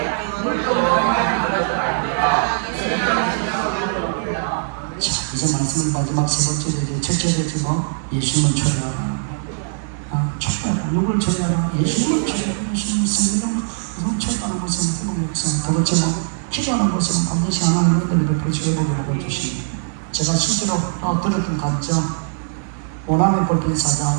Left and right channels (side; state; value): left; silent; digital silence